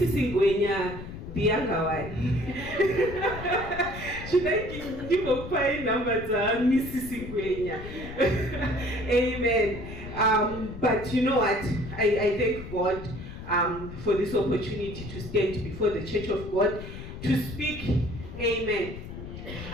Ngwenya, the younger one. Should I give a fine number to Mrs. Ngwenya? Amen. But you know what? I thank God for this opportunity to stand before the Church of God to speak. Amen.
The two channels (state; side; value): noise; left; rumble, 11 dB below the sound